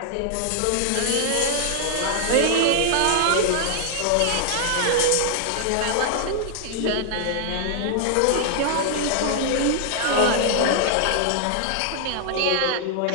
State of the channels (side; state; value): both; different; correlation -0.01